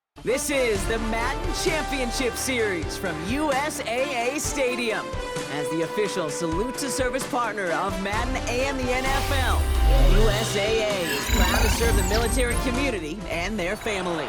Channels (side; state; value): both; identical; correlation 1.00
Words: This is the Madden Championship Series from USAA Stadium. As the official salute-to-service partner of Madden and the NFL, USAA is proud to serve the military community and their